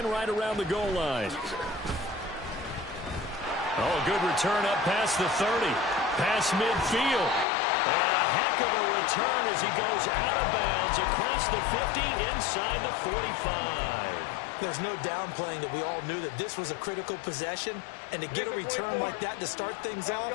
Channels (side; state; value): right; drops out; at 7.5 s